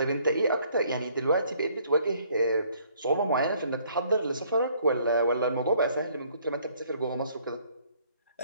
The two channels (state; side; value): inverted; both; correlation -0.63